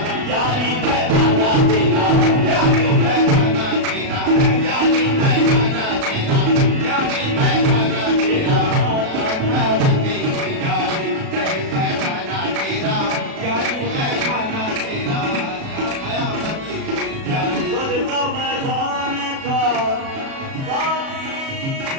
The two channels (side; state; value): left; late; 37 ms